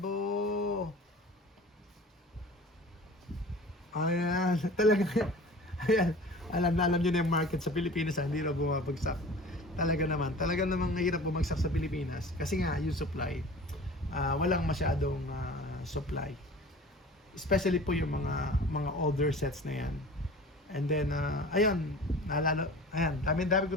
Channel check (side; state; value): both; normal; correlation 0.41